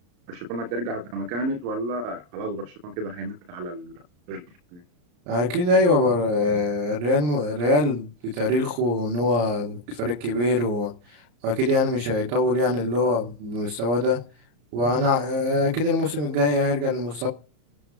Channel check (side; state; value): left; late; 34 ms